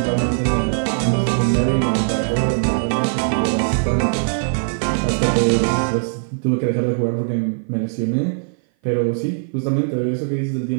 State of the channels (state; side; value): silent; left; 57 dB below the other